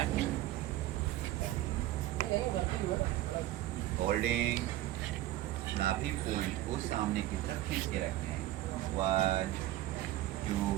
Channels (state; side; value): quieter; left; 15.0 dB